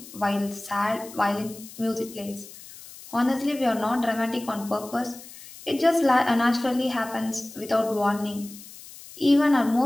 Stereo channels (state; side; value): noise; left; hiss, 17 dB below the sound